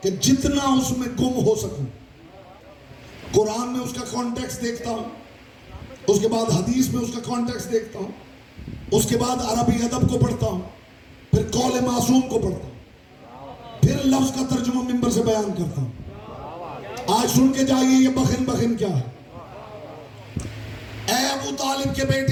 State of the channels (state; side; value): identical; both; correlation 1.00